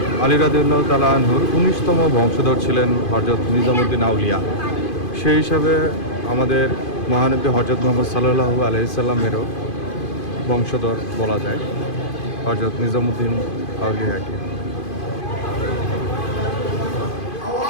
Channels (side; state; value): right; late; 2.5 ms